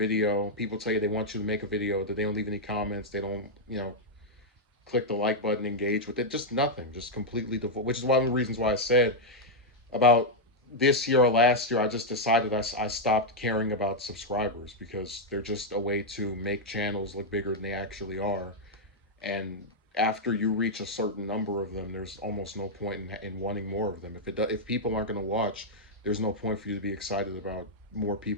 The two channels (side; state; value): both; normal; correlation -0.03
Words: People tell you they want you to make a video, that they don't leave any comments. They don't, click the like button, engage with it. Just nothing. Just completely devoid. Which is one of the reasons why I said about this year or last year, I just decided I stopped caring about subscribers because they're just a way to make channels look bigger than they actually are. And after you reach a certain number of them, there's almost no point in wanting more of them. If people aren't going to watch, there's no point for you to be excited about more